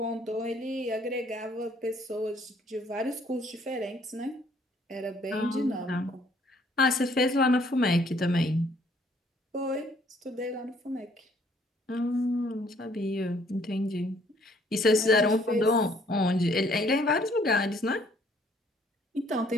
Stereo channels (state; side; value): normal; both; correlation 0.63